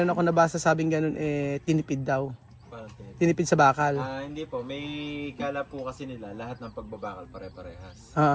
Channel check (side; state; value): both; identical; correlation 1.00